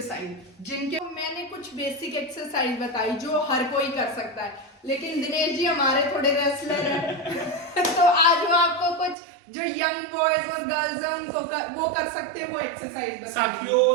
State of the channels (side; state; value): left; drops out; at 9.2 s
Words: जिनके मैंने कुछ बेसिक एक्सरसाइज बताई जो हर कोई कर सकता है, लेकिन दिनेश जी हमारे थोड़े रेसलर हैं तो आज वो आपको कुछ जो यंग बॉयज और गर्ल्स हैं उनको वो कर सकते हैं वो एक्सरसाइज बताइए। साथियों,